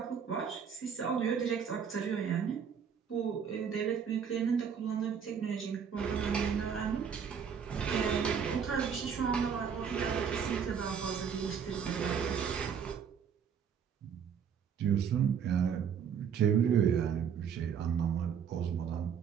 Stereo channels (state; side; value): quieter; left; 7.3 dB